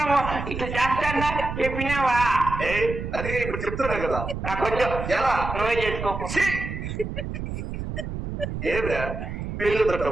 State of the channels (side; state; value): right; noise; rumble, 6 dB below the sound